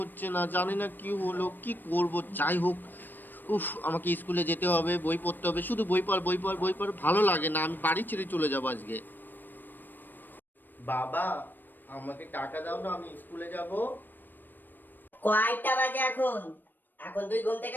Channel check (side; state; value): right; late; 0.092 ms